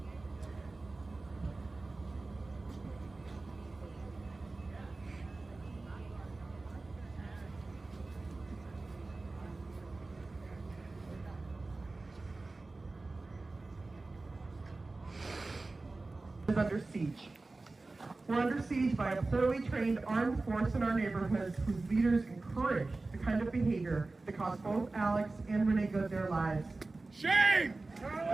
Is under siege. We're under siege by a poorly trained armed force in our neighborhoods whose leaders encourage the kind of behavior that cost both Alex and Renee Good their lives. Shame!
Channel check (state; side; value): quieter; left; 3.4 dB